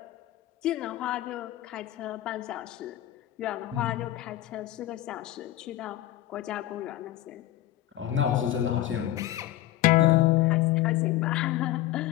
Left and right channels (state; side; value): quieter; right; 14.3 dB